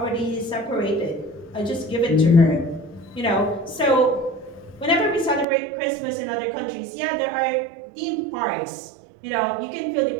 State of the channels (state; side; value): drops out; left; at 5.5 s